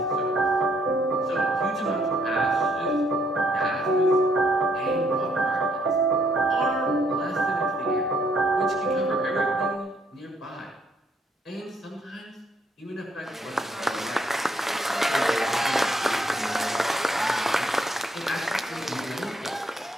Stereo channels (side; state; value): both; normal; correlation 0.70